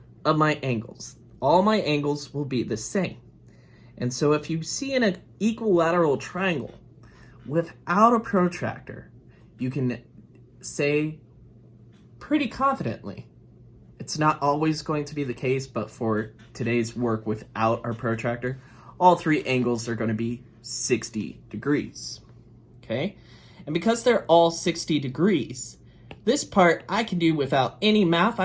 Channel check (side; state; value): both; identical; correlation 1.00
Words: of my angles. All my angles will be the same. And so if you see an equilateral triangle without a protractor, you can say pretty confidently, it's not always going to be the case, but for today's work without our protractor, all three angles are going to be 60 degrees. Okay? And because they're all 60 degrees, this part I can do without any math.